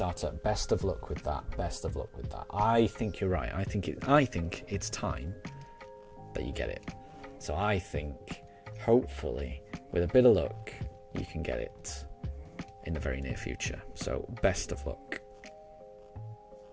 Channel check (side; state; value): both; identical; correlation 1.00